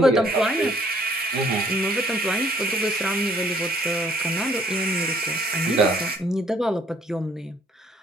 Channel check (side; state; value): both; normal; correlation 0.62